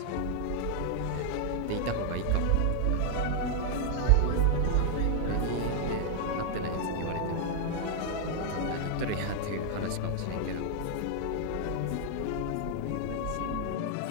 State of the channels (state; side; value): different; both; correlation 0.00